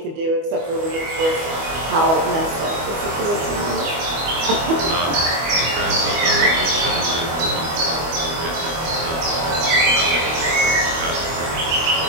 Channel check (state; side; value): late; left; 25 ms